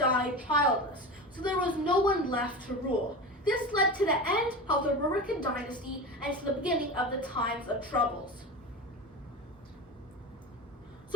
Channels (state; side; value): normal; both; correlation 0.27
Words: childless. So there was no one left to rule. This led to the end of the Rurikan dynasty and to the beginning of the times of troubles.